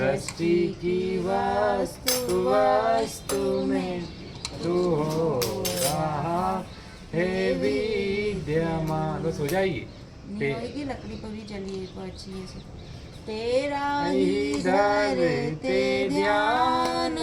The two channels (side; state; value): both; identical; correlation 1.00